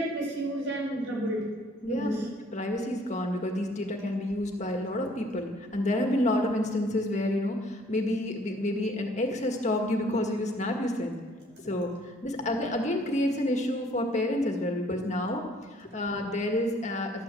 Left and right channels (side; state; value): both; normal; correlation 0.59